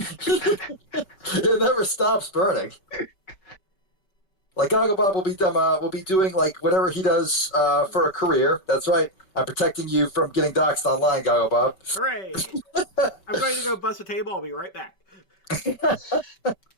never stops burning. Like Goggle Bob will be doing like whatever he does for a career. That's right. I'm protecting you from getting doxxed online, Goggle Bob. Hooray! I'm going to go bust a table. I'll be right back.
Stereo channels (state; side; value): late; right; 5.2 ms